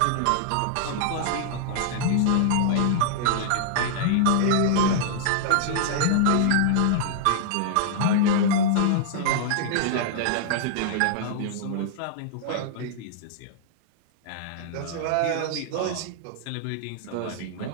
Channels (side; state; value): both; different; correlation -0.01